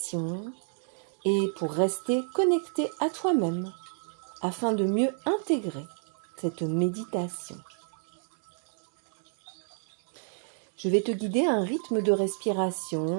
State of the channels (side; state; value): left; silent; 58 dB below the other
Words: et pour rester connecté à toi-même afin de mieux intégrer cette méditation. Je vais te guider à un rythme de